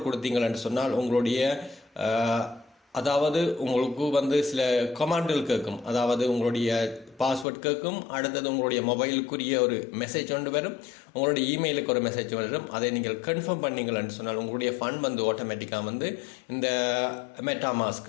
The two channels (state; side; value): drops out; right; at 7.5 s